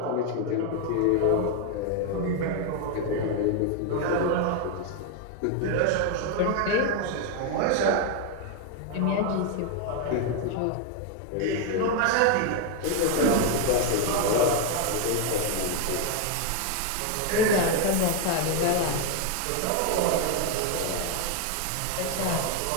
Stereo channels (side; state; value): both; different; correlation 0.01